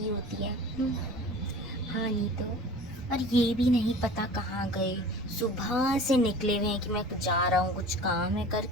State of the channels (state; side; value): normal; both; correlation 0.41